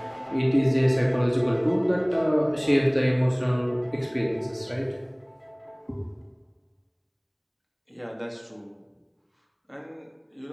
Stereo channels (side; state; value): both; identical; correlation 1.00